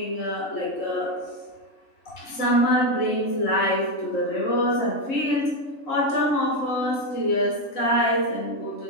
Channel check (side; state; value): right; late; 3.7 ms